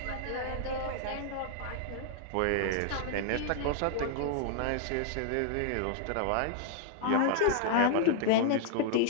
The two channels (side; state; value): both; different; correlation 0.00